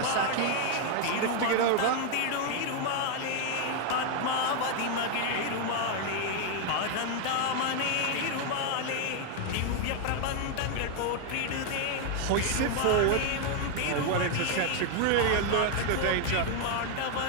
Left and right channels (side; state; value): both; different; correlation 0.00